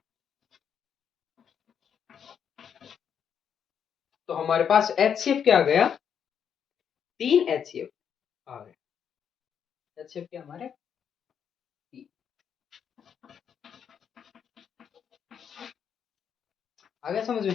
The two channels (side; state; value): right; quieter; 7.8 dB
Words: तो हमारे पास एचसीएफ क्या आ गया 3 एचसीएफ आ गया एचसीएफ क्या हमारे 3 आ गया समझ